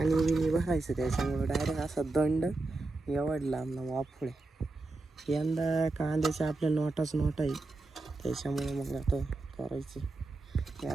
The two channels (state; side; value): quieter; left; 3.1 dB